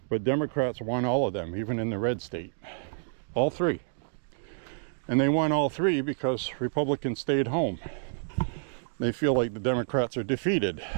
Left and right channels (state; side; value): silent; left; digital silence